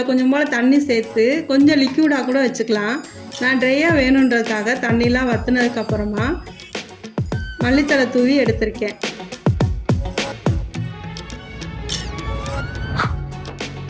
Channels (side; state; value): both; identical; correlation 1.00